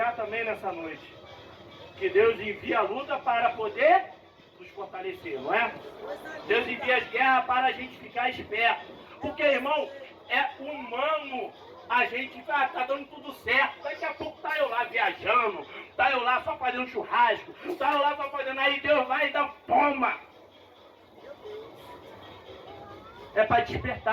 também nessa noite. Que Deus envia a luta para poder nos fortalecer, não é? Deus envia as guerras para a gente ficar esperto. Porque, irmão, é humano a gente tá dando tudo certo. Daqui a pouco tá eu lá viajando, tá eu lá só fazendo churrasco, tá eu lá só fazendo. Aí Deus vai e dá toma. É para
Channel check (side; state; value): both; identical; correlation 1.00